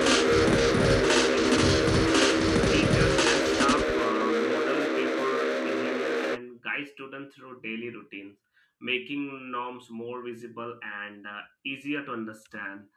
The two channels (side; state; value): both; identical; correlation 1.00